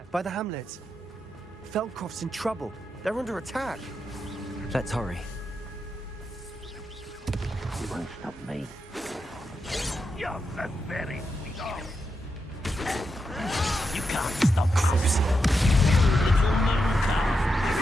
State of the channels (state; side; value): normal; both; correlation 0.86